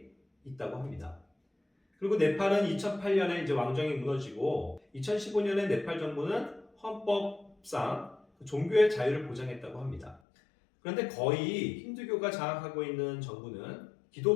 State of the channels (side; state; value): right; drops out; at 10.2 s